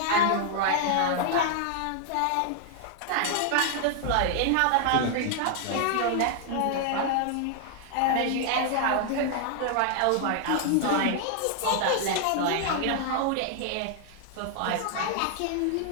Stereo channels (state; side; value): different; both; correlation 0.00